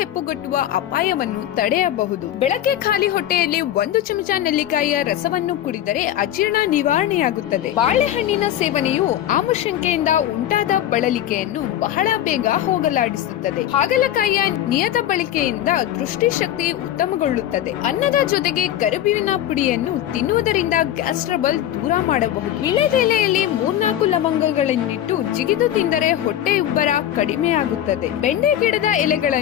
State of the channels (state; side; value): quieter; right; 11.8 dB